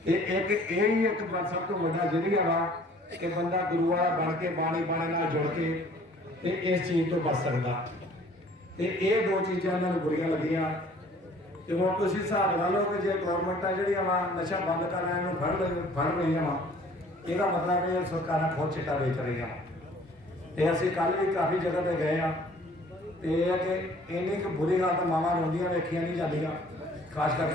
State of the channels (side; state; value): both; normal; correlation 0.54